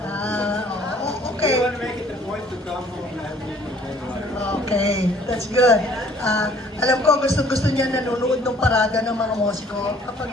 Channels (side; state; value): both; normal; correlation 0.57